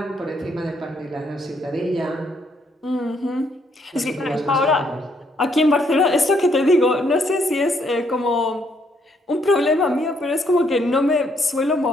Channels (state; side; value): normal; both; correlation 0.71